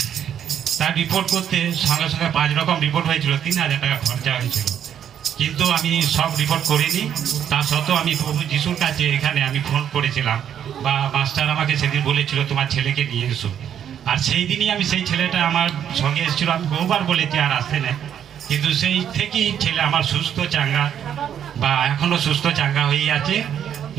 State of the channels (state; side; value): quieter; left; 9.3 dB